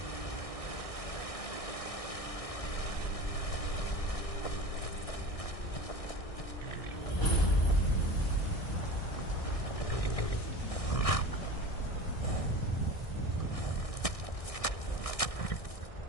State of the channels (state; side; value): late; right; 1.6 ms